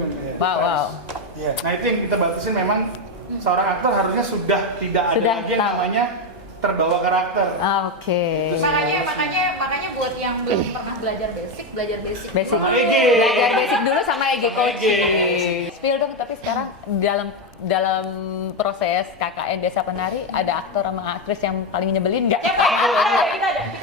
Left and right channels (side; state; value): both; normal; correlation 0.09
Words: kan. Wow. Iya. Nah itu yang kita batasin memang seorang aktor harusnya sudah tidak ada Sudah lagi yang tahu. namanya terbawa karakter. Oke. Makanya buat yang belum pernah belajar basic. Basic. Sama EG. Belajar basic dulu sama EG coaching. EG. Spill dong, tapi sekarang dalam proses KKN Desa Penari ada aktor sama aktris yang paling nyebelin nggak? Kita ada.